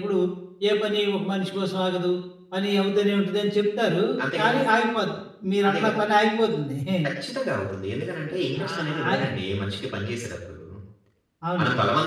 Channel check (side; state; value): both; identical; correlation 1.00